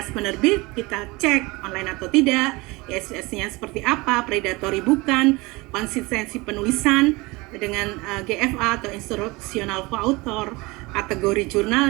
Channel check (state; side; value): quieter; left; 23.6 dB